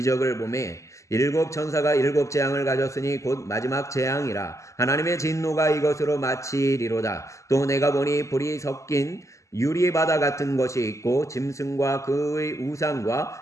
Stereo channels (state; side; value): late; right; 0.15 ms